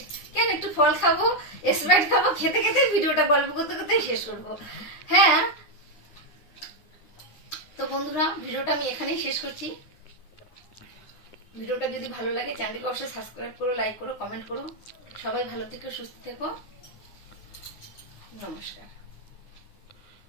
কেন একটু ফল খাবো, স্প্রাইট খাবো, খেতে খেতে ভিডিওটা গল্প করতে করতেই শেষ করবো। হ্যাঁ, তো বন্ধুরা ভিডিওটা আমি এখানেই শেষ করছি। ভিডিওটা যদি ভালো লাগে চ্যানেলটিকে অবশ্যই সাবস্ক্রাইব করো, লাইক করো, কমেন্ট করো। সবাই ভালো থেকো, সুস্থ থেকো। নমস্কার।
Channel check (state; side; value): late; right; 9.8 ms